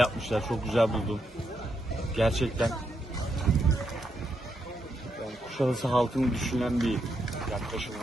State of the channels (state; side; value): normal; both; correlation 0.81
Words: çok güzel buldum. Gerçekten yani Kuşadası halkını düşünen bir yaklaşım